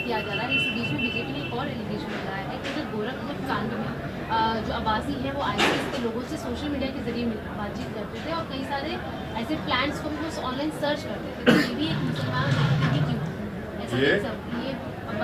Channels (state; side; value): identical; both; correlation 1.00